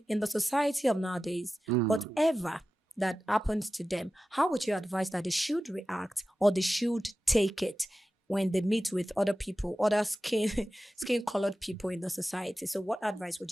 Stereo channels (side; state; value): both; normal; correlation 0.94